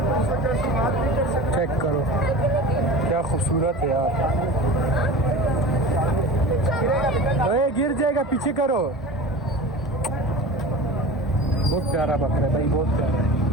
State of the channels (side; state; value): both; normal; correlation 0.34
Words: चेक करो क्या खूबसूरत है यार। अरे गिर जाएगा, पीछे करो। बहुत प्यारा बकरा है भाई, बहुत प्यारा है।